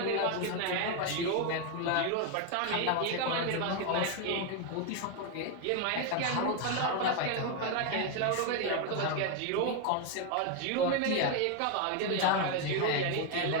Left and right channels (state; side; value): different; both; correlation 0.01